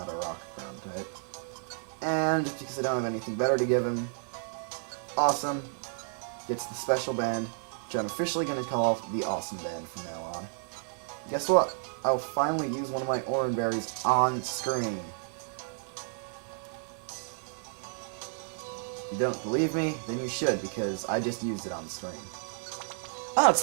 a rock ground type. And because I don't have anything better to give him, Awesome gets the special band, which I'm officially going to call the Awesome Band from now on. Guess what? I'll finally use one of my Oran Berries on screen. If you don't believe me, then you should, because I just used it on the screen. Oh, it's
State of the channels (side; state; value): left; silent; digital silence